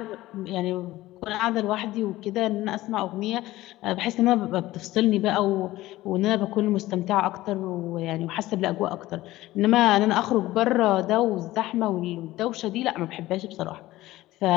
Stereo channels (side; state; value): right; quieter; 16.9 dB